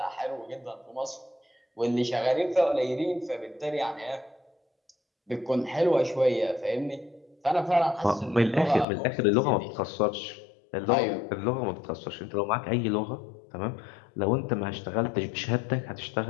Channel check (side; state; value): right; drops out; at 8.8 s